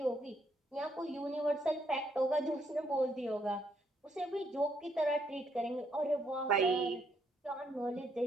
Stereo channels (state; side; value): normal; both; correlation 0.73